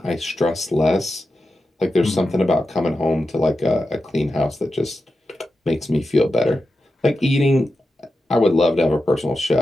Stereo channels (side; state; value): both; normal; correlation 0.91